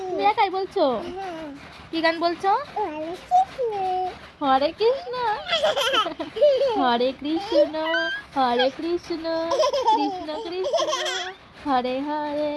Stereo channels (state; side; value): identical; both; correlation 1.00